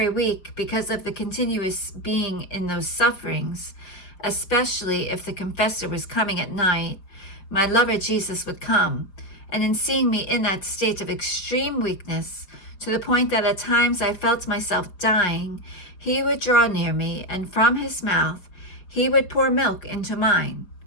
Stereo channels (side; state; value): right; late; 5.3 ms